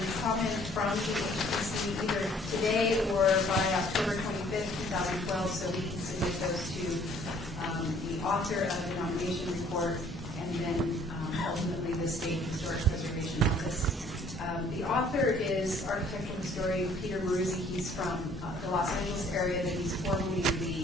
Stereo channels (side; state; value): both; normal; correlation 0.58